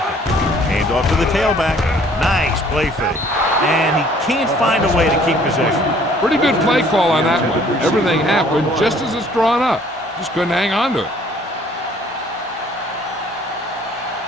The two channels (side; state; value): both; normal; correlation 0.57